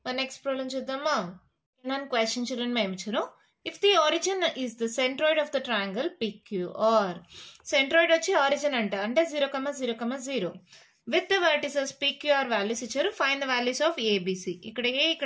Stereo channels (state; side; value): identical; both; correlation 1.00